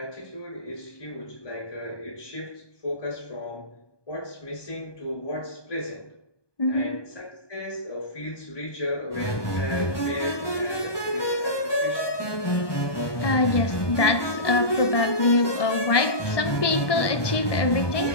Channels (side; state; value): right; late; 1.2 ms